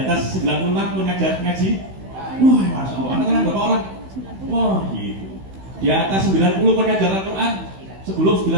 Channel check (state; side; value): late; left; 16 ms